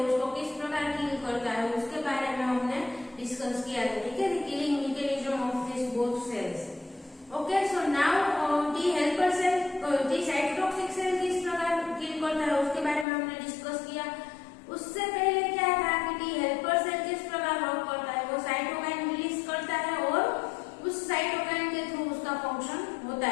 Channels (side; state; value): right; drops out; at 13.1 s